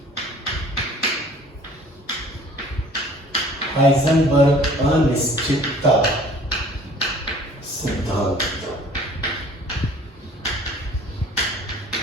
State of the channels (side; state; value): both; normal; correlation 0.51